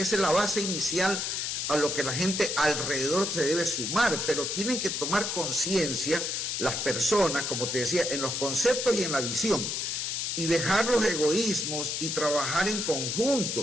la base inicial a lo que la gente alrededor se debe sumar, pero tienen que tomar conciencia las personas, como te decía, en los conceptos y en la visión, y dejar los egoísmos y trabajar en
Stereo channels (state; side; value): noise; left; hiss, 2 dB below the sound